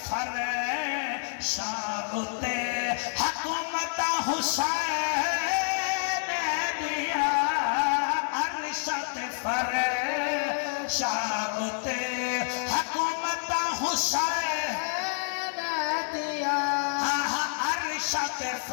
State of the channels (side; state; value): right; silent; 59 dB below the other